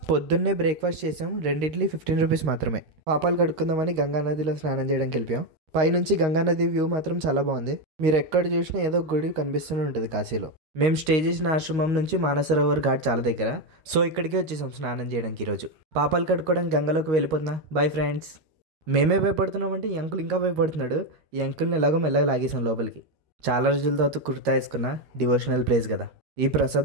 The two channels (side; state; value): left; late; 13 ms